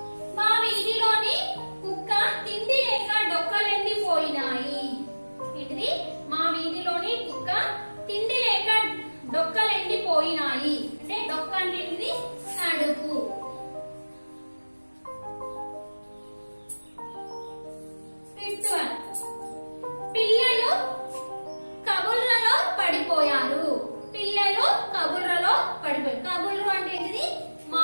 మా వీధిలోని కుక్క తిండి లేక డొక్కలెండిపోయినాయి. ఏంటిది? మా వీధిలోని కుక్క తిండి లేక డొక్కలెండిపోయినాయి. అంటే డొక్క అంటే ఏంటిది? కడుపు. ఫిఫ్త్ వన్, పిల్లలు కబుర్లలో పడిపోయారు. పిల్లలు కబుర్లలో పడిపోయారు. కబుర్లు అంటే ఏంటిది?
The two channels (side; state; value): both; inverted; correlation -1.00